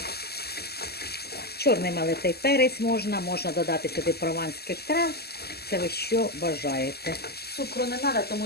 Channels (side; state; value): right; late; 0.46 ms